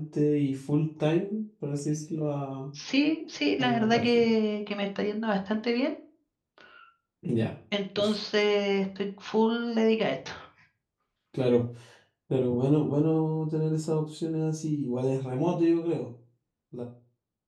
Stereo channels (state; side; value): identical; both; correlation 1.00